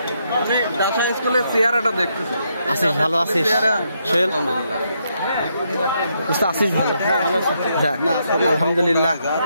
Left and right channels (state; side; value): inverted; both; correlation -0.77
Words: আমি ডাসা স্কুলের চেহারাটা দেখতেছি। আছিস ভালো আছিস? সোহেল আছিস ভালো? আলহামদুলিল্লাহ।